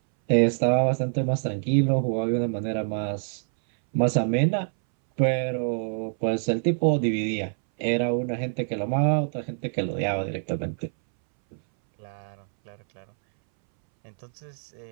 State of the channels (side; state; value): left; silent; 61 dB below the other